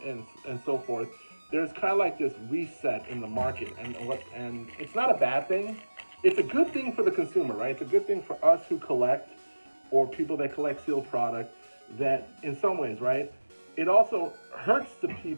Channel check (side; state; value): both; inverted; correlation -1.00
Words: so forth, there's kind of like this reset in the market, and it's not a bad thing. It's a good thing for the consumer, right? It's a good thing for us who collect, or people that collect sealed product, that in some ways, right? It also hurts the